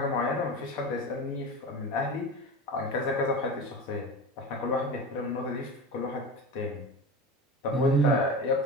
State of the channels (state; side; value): normal; both; correlation 0.29